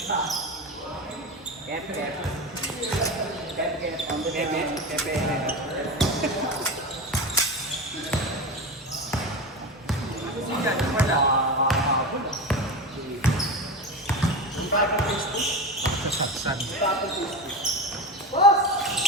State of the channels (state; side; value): normal; both; correlation 0.23